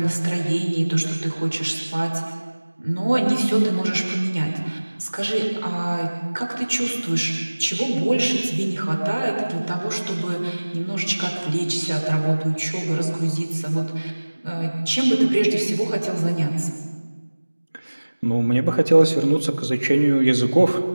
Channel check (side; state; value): both; inverted; correlation -1.00